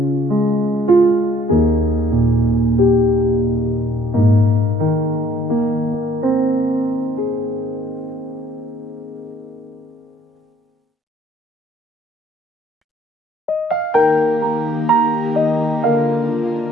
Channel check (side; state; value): both; normal; correlation 0.62